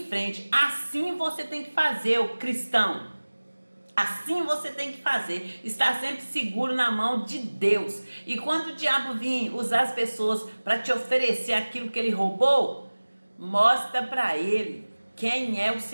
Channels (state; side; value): inverted; both; correlation -1.00